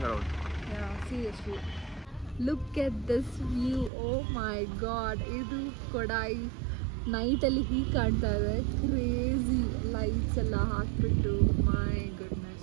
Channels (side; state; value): left; drops out; at 3.9 s